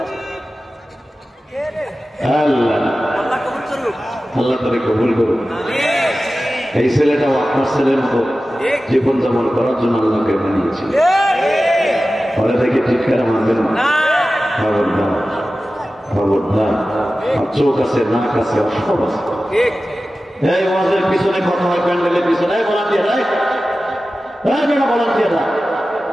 আছে আল্লাহ তারে কবুল করুন। এই ছেলেটাও আপনার ছেলের মতো জীবন যাপন করার জন্য আল্লাহকে বানিয়েছিল। ফলে থেকে চিৎকারা মানবেন না, খবরদার খবরদার। চোখ আছে, নাক আছে, সব আছে। এই ওয়াজের পিছনে কথা হয়, প্যান্ডেলের পিছনে ভলান্টিয়াররা, বেড়া ভলান্টিয়াররা,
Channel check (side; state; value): both; normal; correlation 0.95